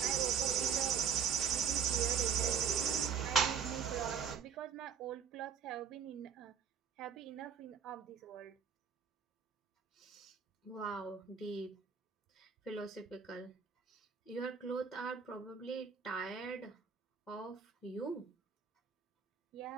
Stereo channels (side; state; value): left; quieter; 7.1 dB